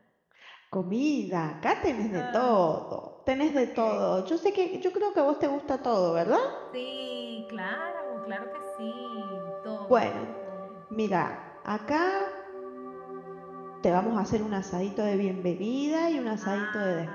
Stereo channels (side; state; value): both; identical; correlation 1.00